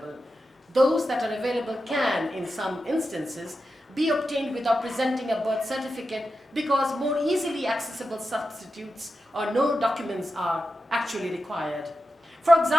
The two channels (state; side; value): normal; both; correlation 0.90